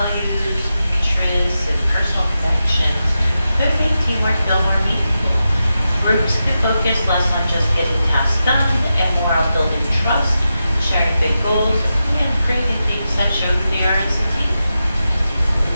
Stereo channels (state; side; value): inverted; both; correlation -0.90